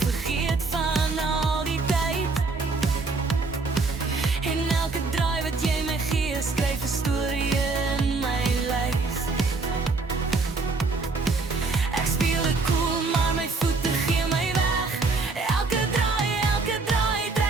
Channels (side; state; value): left; quieter; 3.9 dB